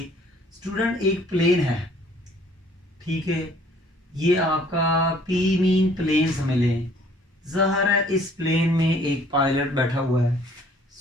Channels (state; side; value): normal; both; correlation 0.57